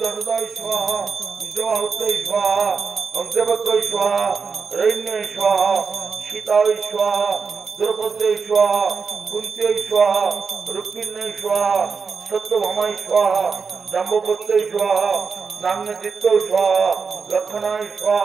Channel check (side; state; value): left; quieter; 5.3 dB